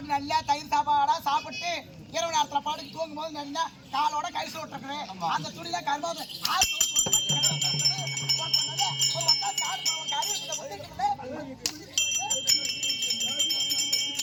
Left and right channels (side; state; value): both; identical; correlation 1.00